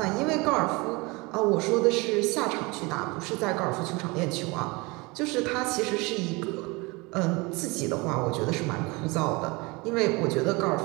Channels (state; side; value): quieter; left; 25.7 dB